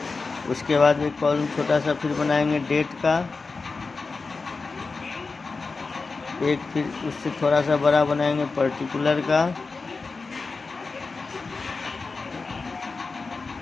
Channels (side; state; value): right; quieter; 4.2 dB